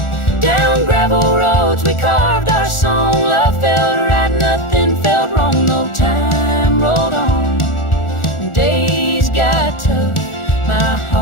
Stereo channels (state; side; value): late; right; 1.4 ms